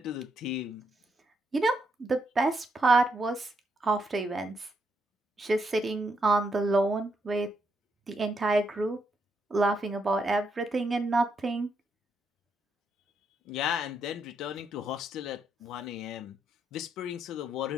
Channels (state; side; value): normal; both; correlation 0.78